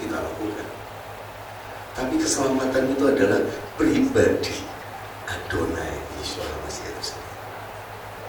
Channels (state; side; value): identical; both; correlation 1.00